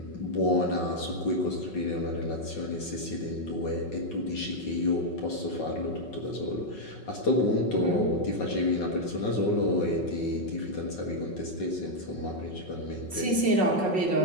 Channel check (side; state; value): right; late; 5.4 ms